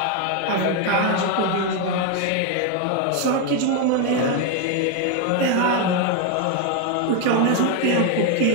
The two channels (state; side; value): different; both; correlation 0.01